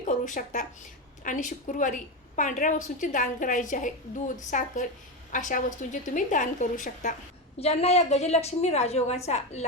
शकता. आणि शुक्रवारी पांढऱ्या वस्तूंचे दान करायचे आहे. दूध, साखर अशा वस्तूंचे तुम्ही दान करू शकता. ज्यांना या गजलक्ष्मी राजयोगाचा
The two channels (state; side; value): normal; both; correlation 0.15